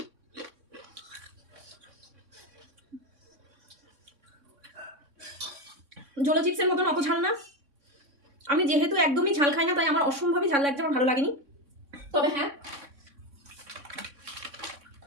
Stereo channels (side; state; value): left; late; 3.6 ms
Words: জোলো চিপসের মতন অত ঝাল না। আমি যেহেতু একদমই ঝাল খাই না তাই আমার অসম্ভবই ঝাল লাগছে, আমার ভালো লাগেনি। তবে হ্যাঁ,